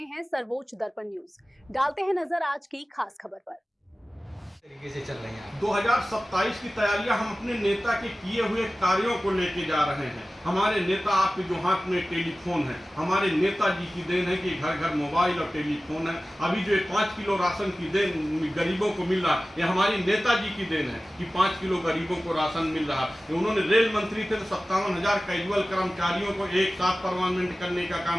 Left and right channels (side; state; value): both; normal; correlation 0.96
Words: हैं सर्वोच्च दर्पण न्यूज। डालते हैं नजर आज की खास खबर पर। तरीके से चल रही हैं 2027 की तैयारियां हम अपने नेता के किए हुए कार्यों को लेके जा रहे हैं। हमारे नेता आपके जो हाथ में टेलीफोन है, हमारे नेताजी की देन है कि घर घर मोबाइल और टेलीफोन है। अभी जो 5 किलो राशन की देन गरीबों को मिल रहा है, ये हमारी नेताजी की देन है कि 5 किलो गरीबों को राशन मिल रहा है। उन्होंने रेल मंत्री थे तो 57,000 कैजुअल कर्मचारियों को एक साथ परमानेंट करने का